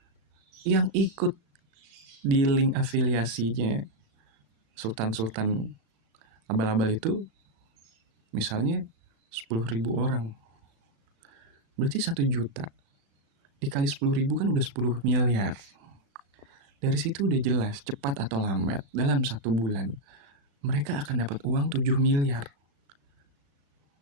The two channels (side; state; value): left; late; 36 ms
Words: yang ikut di link afiliasinya sultan abal-abal itu misalnya 10.000 orang, berarti 1 juta dikali 10.000 kan udah 10 miliar. Dari situ udah jelas cepat atau lambat dalam 1 bulan mereka akan dapat uang 7 miliar